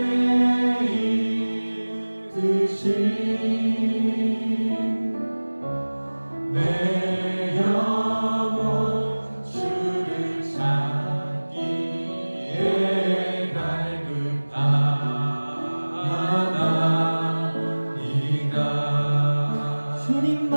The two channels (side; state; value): both; inverted; correlation -1.00